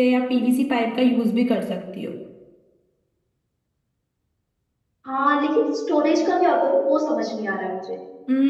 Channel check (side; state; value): both; identical; correlation 1.00